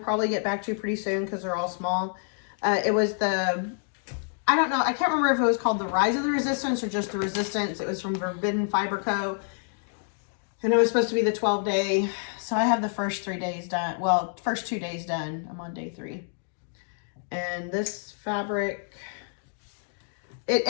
get back to pretty soon because they're all small. It was I don't know, I can't remember if it was called the Rise of the Resistance or just the Resistance. It was from Forbidden Fiber Co. And it was supposed to be the 12-day. So I have the first 3 days done. Well, first 2 days done. I'm on day 3. And this fabric,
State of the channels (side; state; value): right; silent; 60 dB below the other